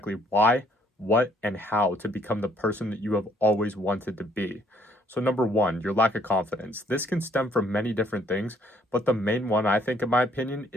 why, what, and how to become the person that you have always wanted to be. So number 1, your lack of confidence. This can stem from many different things, but the main one, I think, in my opinion,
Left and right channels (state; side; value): normal; both; correlation 0.65